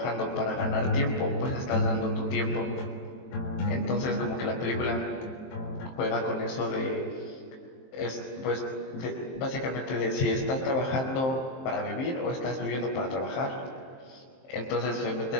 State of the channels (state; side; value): late; right; 23 ms